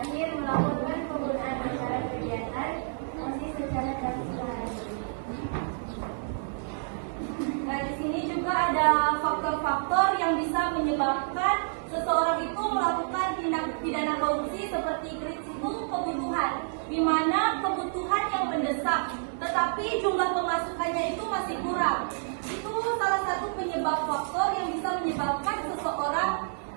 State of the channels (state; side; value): silent; left; digital silence